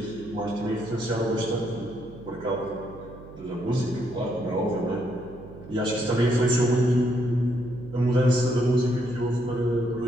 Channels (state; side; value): noise; right; hum, 17 dB below the sound